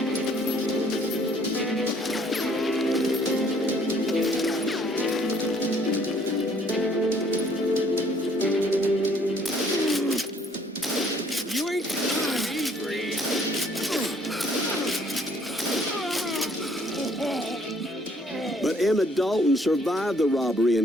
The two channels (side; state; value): both; normal; correlation 0.62